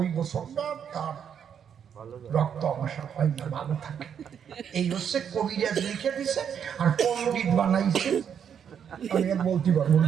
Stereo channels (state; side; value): quieter; left; 8.1 dB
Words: বছরটা তার রক্ত অবসর হয় না ভালো থাকে এই হচ্ছে কবিরাজ লিখে দিছে আর পণ্ডিত বানাইছে আমি আর বলতে পারবো না